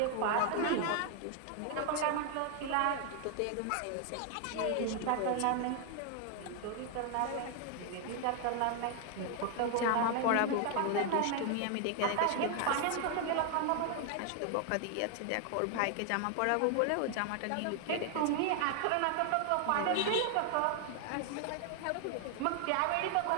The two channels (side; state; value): both; different; correlation 0.00